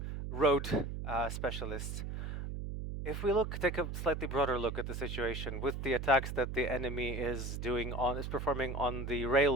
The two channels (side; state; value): right; noise; hum, 5 dB below the sound